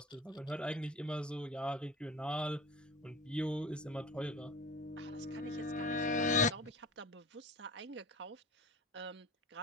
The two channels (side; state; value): both; normal; correlation 0.37